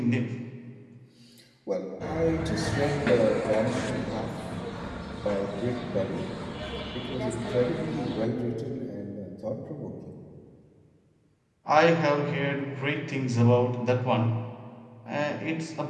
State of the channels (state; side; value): identical; both; correlation 1.00